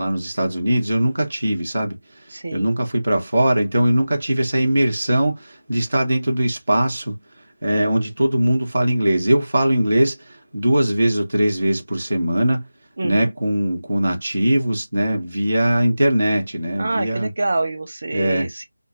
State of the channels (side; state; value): both; inverted; correlation -0.95